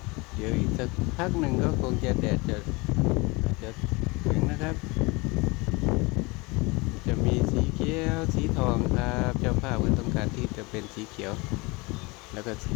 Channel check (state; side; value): quieter; right; 25.9 dB